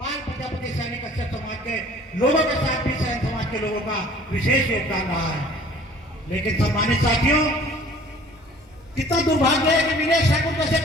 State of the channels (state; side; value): normal; both; correlation 0.51